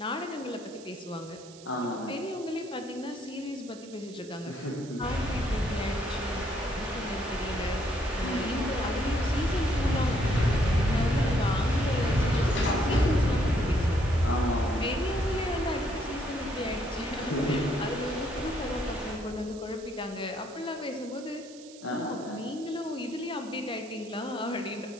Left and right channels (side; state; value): right; noise; hiss, 20 dB below the sound